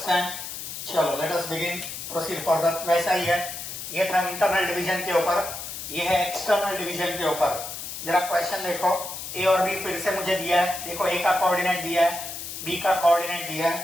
चलो let us begin, proceed further. वैसा ही है, ये था इंटरनल डिवीजन के ऊपर, ये है एक्सटर्नल डिवीजन के ऊपर। जरा क्वेश्चन देखो, ए और बी फिर से मुझे दिया है। देखो ए का कोऑर्डिनेट दिया है, बी का कोऑर्डिनेट दिया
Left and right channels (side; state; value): left; noise; hiss, 8 dB below the sound